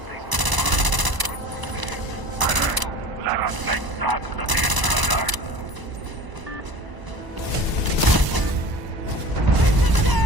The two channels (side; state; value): left; late; 1.0 ms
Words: Let us make that to the intruder!